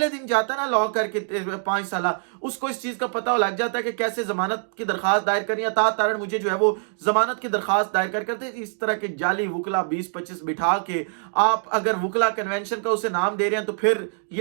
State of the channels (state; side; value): silent; left; digital silence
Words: दिन जाता है ना लॉ करके 5 साल, उसको इस चीज का पता लग जाता है कि कैसे जमानत की दरखास्त दायर करनी है। अता तारड़ मुझे जो है वो जमानत की दरखास्त दायर करते इस तरह के जाली वुकला 20-25 बिठा के आप अगर वुकला कन्वेंशन का उसे नाम दे रहे हैं तो फिर